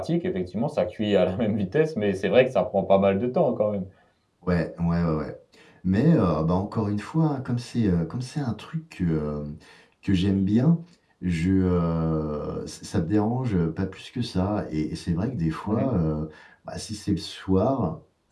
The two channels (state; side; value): identical; both; correlation 1.00